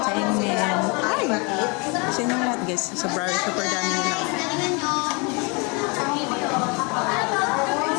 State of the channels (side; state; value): right; quieter; 30.5 dB